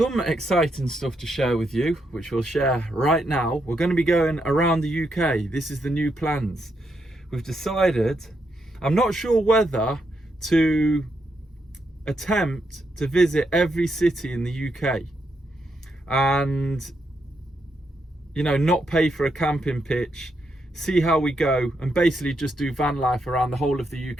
exciting stuff to share with you, which we'll share right now. We're going to be going around the UK. This is the new plans. We've decided, I'm not sure whether to attempt to visit every city in the UK and, you know, not pay for a camping pitch, see how we go, and basically just do van life around the whole of the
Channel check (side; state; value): both; normal; correlation 0.80